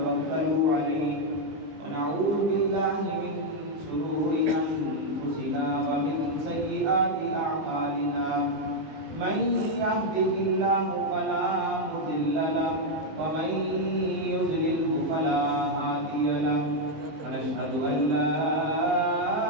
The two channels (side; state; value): left; late; 20 ms